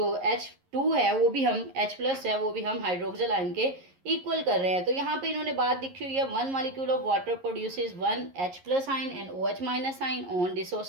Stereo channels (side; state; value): left; late; 11 ms